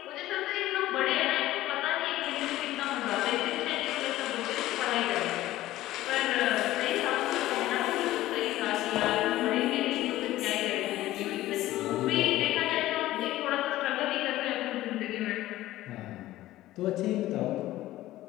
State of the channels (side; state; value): right; quieter; 15.6 dB